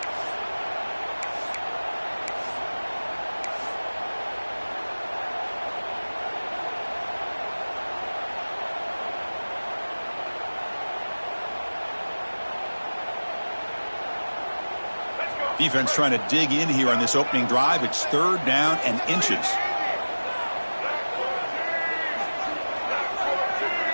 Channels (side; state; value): both; inverted; correlation -1.00